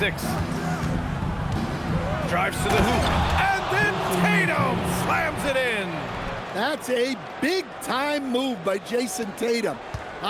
Drives to the hoop. And then Tatum slams it in. That's a big-time move by Jason Tatum.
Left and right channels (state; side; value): identical; both; correlation 1.00